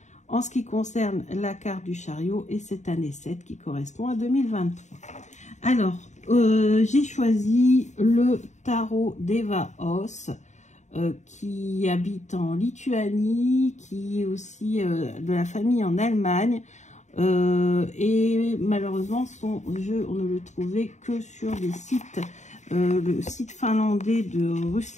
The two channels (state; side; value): late; right; 0.34 ms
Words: en ce qui concerne la carte du chariot et cette année 7 qui correspond à 2023. Alors, j'ai choisi le tarot d'Eva Os, qui habite en Lituanie, qui est aussi de la famille en Allemagne. Et malheureusement, son jeu, on ne le trouvait que sur des sites, le site finlandais de